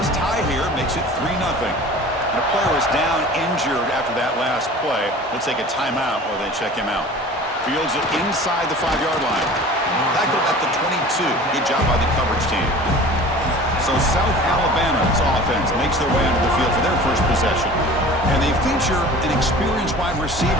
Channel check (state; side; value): normal; both; correlation 0.42